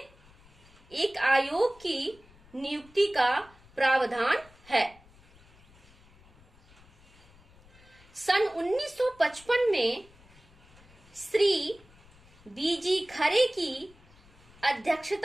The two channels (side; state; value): left; noise; rumble, 26 dB below the sound